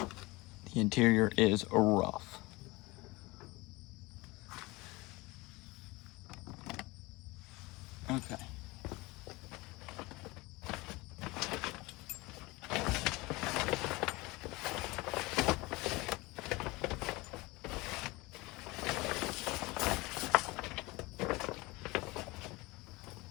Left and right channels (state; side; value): quieter; right; 22.8 dB